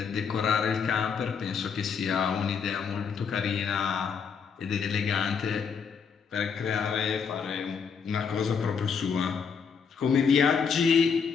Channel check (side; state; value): right; quieter; 6.3 dB